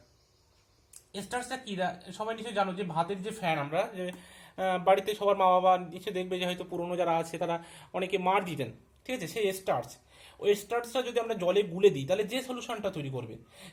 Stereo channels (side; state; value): both; identical; correlation 1.00